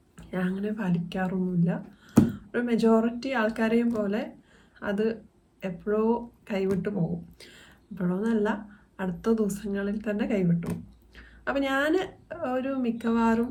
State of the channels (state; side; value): identical; both; correlation 1.00